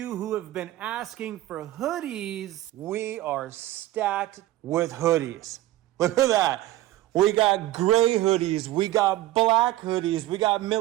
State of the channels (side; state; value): left; quieter; 15.5 dB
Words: who have been asking for hoodies, we are stacked with hoodies. Look at that. We got gray hoodies. We got black hoodies. We got